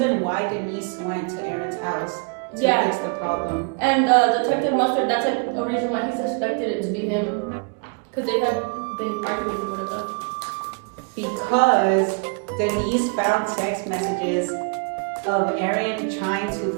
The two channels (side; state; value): left; quieter; 35.3 dB